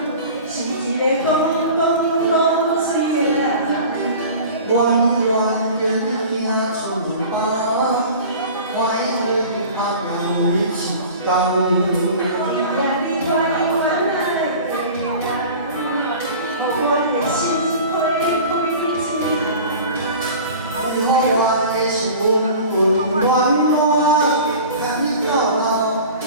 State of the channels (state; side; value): inverted; both; correlation -0.39